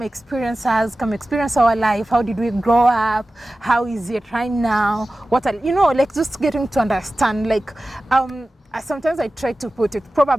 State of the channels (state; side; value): normal; both; correlation 0.95